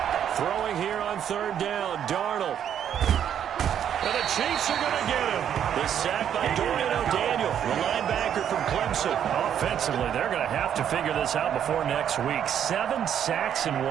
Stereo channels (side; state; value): left; quieter; 9.3 dB